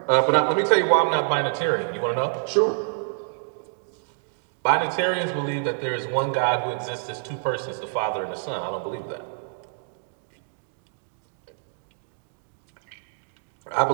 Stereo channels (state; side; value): silent; left; digital silence